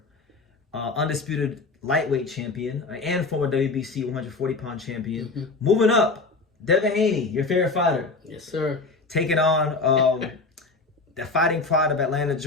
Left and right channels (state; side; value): quieter; right; 3.8 dB